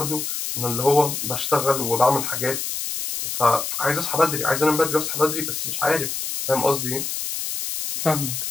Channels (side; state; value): left; noise; hiss, 4 dB below the sound